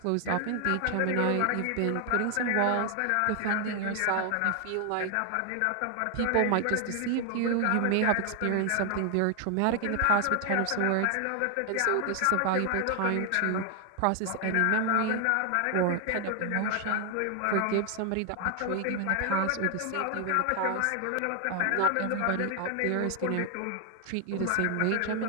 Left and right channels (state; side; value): different; both; correlation 0.00